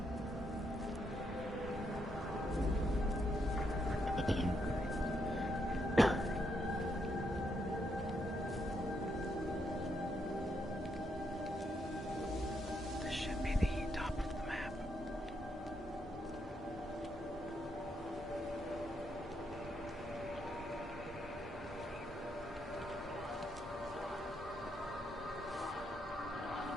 This should be the top of the map.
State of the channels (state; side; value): normal; both; correlation 0.78